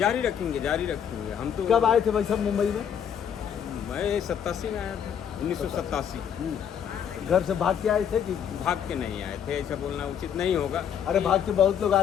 रखेंगे हम तो। कब आए थे भाई साहब मुंबई में? मैं 87 में आया था, 1987। घर से भाग के आए थे कि? भाग के नहीं आए थे, ऐसा बोलना उचित नहीं होगा। अरे भाग के बहुत लोग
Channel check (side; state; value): right; quieter; 8.5 dB